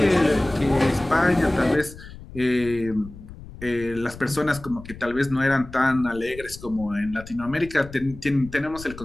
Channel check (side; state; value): left; noise; rumble, 16 dB below the sound